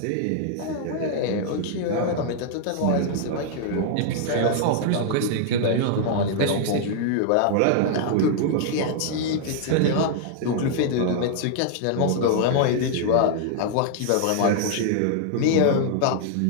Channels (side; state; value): both; different; correlation -0.01